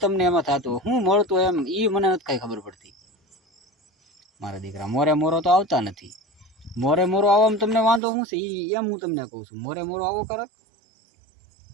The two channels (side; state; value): left; drops out; at 8.0 s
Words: એમાં થતું શું મળતું એમ એ મને નથી કાંઈ ખબર પડતી। મારા દીકરા મોરે મોરો તો આવતા નથી, મોરે મોરો આવવામાં તમને વાંધો શું છે એમ હું તમને કહું છું। મોરે મોરો આવો કરે,